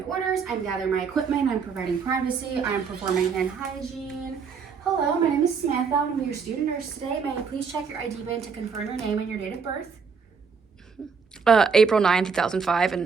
orders, I'm gathering my equipment, I'm providing privacy, I'm performing hand hygiene. Hello, my name is Samantha. I'm your student nurse today. May I please check your ID band to confirm your name and your date of birth? April 9, 2005,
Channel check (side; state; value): left; quieter; 5.8 dB